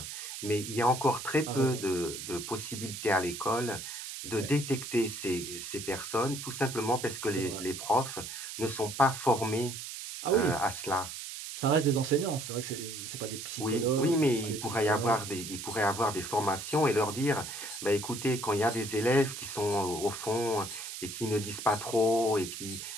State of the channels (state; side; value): noise; right; hiss, 8 dB below the sound